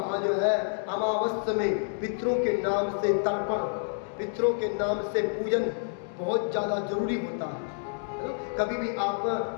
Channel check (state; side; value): silent; right; digital silence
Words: जो है अमावस्या में पितरों के नाम से तर्पण, पितरों के नाम से पूजन बहुत ज़्यादा जरूरी होता है ना? कभी भी आप